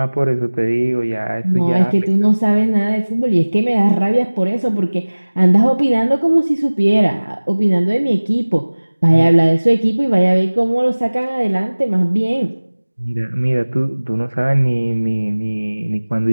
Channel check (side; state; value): both; inverted; correlation -1.00